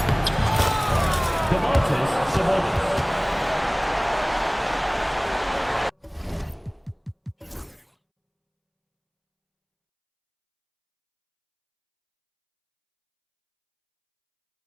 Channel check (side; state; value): both; identical; correlation 1.00